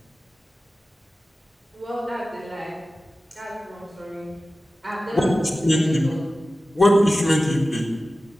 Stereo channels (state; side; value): normal; both; correlation 0.95